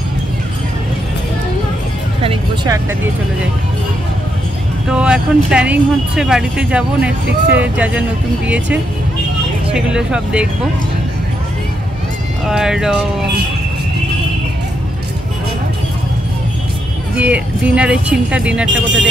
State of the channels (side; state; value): both; normal; correlation 0.80